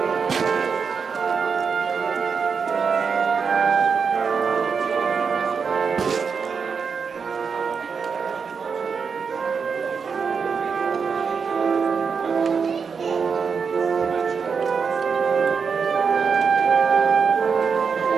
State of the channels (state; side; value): quieter; left; 5.8 dB